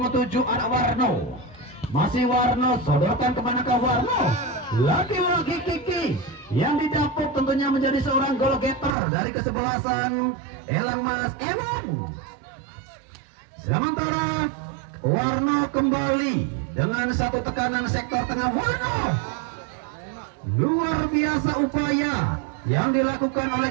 7 ada Warno. Masih Warno, sodorkan kemanakah Warno? Lagi-lagi Kiki yang didapuk tentunya menjadi seorang goal getter dari kesebelasan Elang Mas. Sementara Warno kembali dengan satu tekanan sektor tengah. Warno, luar biasa upaya yang dilakukan oleh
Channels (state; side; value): drops out; left; at 8.9 s